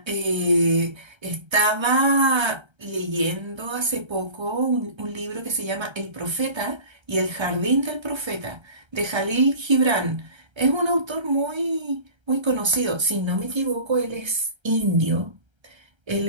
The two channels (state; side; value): late; left; 1.3 ms